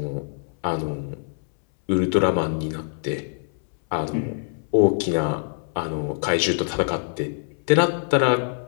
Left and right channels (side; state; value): right; silent; 60 dB below the other